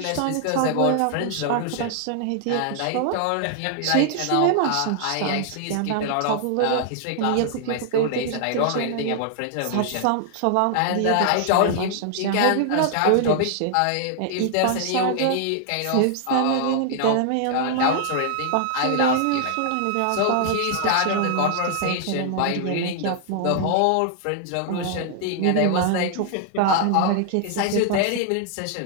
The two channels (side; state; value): both; different; correlation 0.00